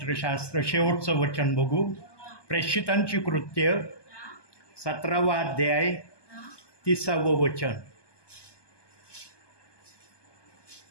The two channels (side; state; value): right; late; 1.2 ms